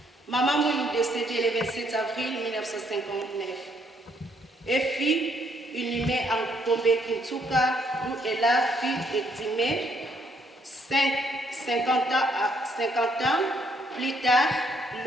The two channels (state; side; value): normal; both; correlation 0.70